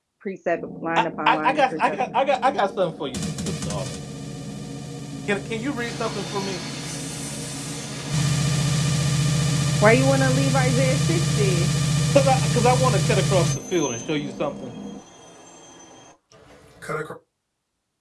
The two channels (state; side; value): identical; both; correlation 1.00